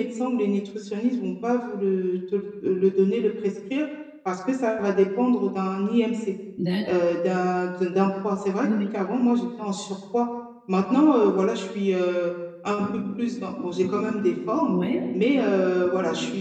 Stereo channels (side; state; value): both; identical; correlation 1.00